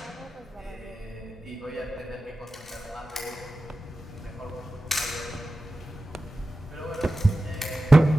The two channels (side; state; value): both; normal; correlation 0.94